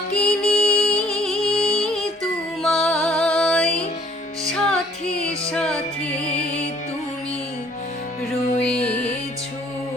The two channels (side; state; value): both; normal; correlation 0.58